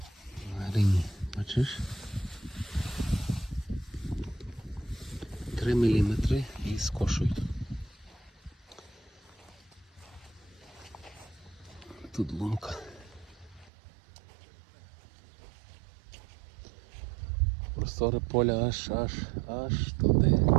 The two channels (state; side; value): drops out; left; at 13.7 s